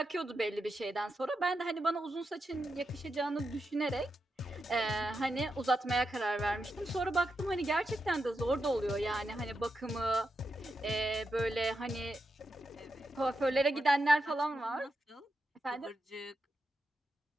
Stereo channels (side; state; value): both; normal; correlation 0.86